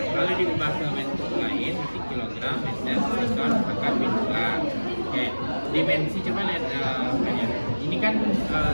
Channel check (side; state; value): both; inverted; correlation -1.00